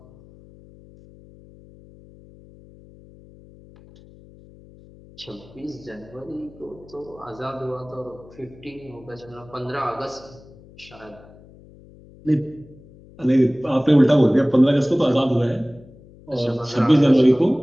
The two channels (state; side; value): noise; left; hum, 23 dB below the sound